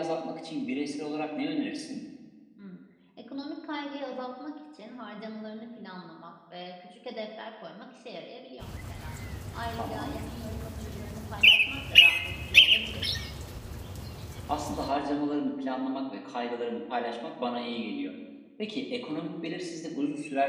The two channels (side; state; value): both; identical; correlation 1.00